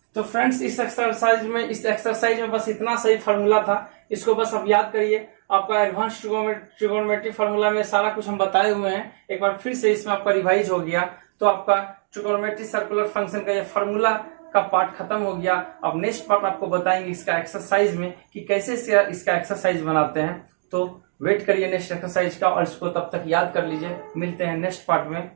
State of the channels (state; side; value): silent; left; digital silence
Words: तो फ्रेंड्स इस एक्सरसाइज में बस इतना सही फॉर्मूला था, इसको बस आप याद करिए। आपका एडवांस ट्रिगोनोमेट्री फॉर्मूला में सारा कुछ हम बताए हुए हैं, एक बार फिर से इसमें आपका रिवाइज हो गया, तो आपका ट्रिगोनोमेट्री सर्कुलर फंक्शन का ये फॉर्मूला का पार्ट खत्म हो गया। अब नेक्स्ट पार्ट आपको बताएंगे इसका एक्सरसाइज में कि कैसे इसका एक्सरसाइज बनाते हैं। तो वेट करिए नेक्स्ट एक्सरसाइज का, और इसको तब तक याद कर लीजिए। मिलते हैं नेक्स्ट पार्ट में।